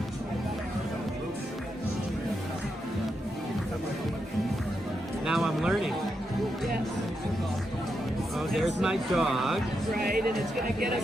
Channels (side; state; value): both; normal; correlation 0.84